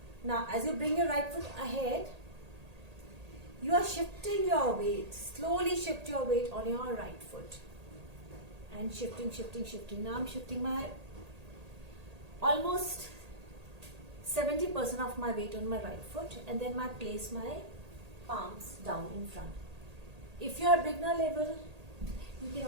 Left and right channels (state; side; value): late; left; 1.8 ms